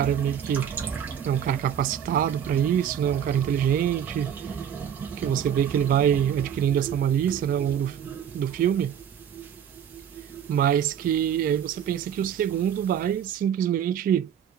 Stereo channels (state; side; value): quieter; left; 9.1 dB